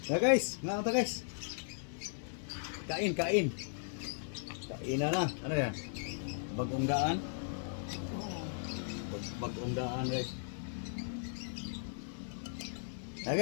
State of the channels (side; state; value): right; silent; 53 dB below the other